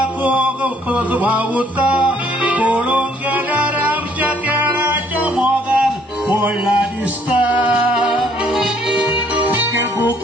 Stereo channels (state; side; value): normal; both; correlation 0.64